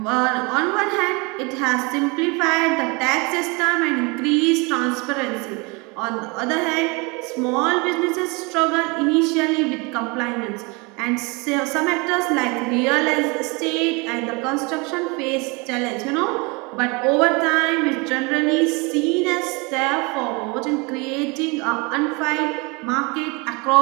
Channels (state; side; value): quieter; left; 28.4 dB